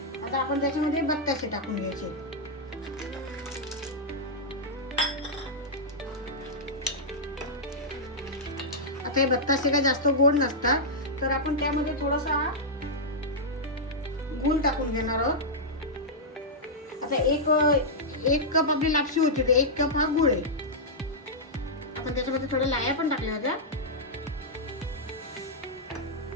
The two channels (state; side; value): normal; both; correlation -0.08